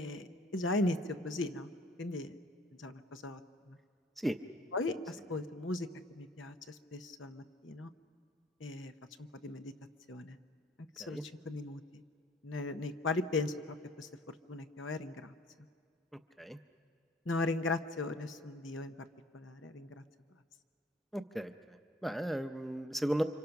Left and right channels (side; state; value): both; normal; correlation 0.57